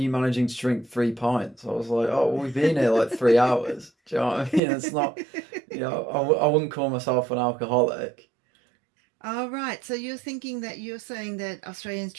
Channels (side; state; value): left; drops out; at 4.6 s